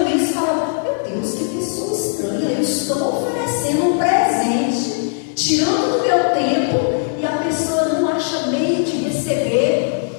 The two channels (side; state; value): right; silent; digital silence